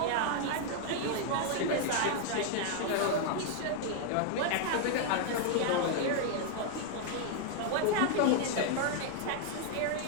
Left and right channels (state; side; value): different; both; correlation 0.00